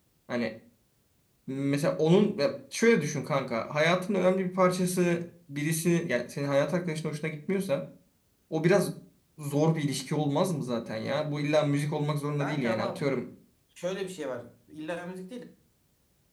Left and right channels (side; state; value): both; identical; correlation 1.00